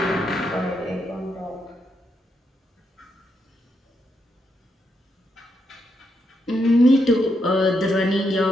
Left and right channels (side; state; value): both; normal; correlation 0.81